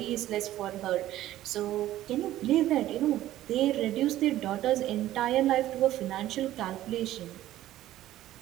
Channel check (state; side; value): quieter; left; 14.1 dB